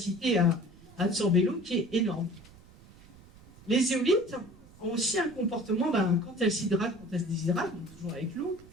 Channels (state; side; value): noise; right; rumble, 23 dB below the sound